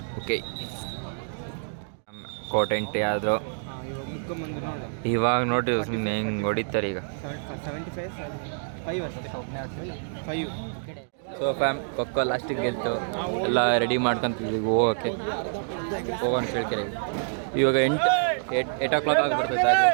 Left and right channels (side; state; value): left; silent; digital silence